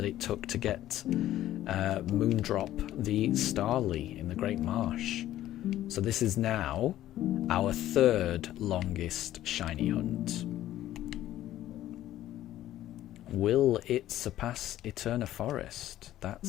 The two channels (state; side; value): quieter; right; 13.4 dB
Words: it took to get Moondrop the Starly in the Great Marsh. So this is now our third longest shiny hunt. Will it surpass Eterna Forest?